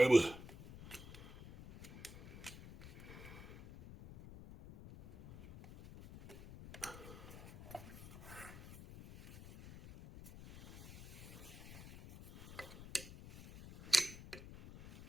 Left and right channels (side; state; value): left; noise; rumble, 14 dB below the sound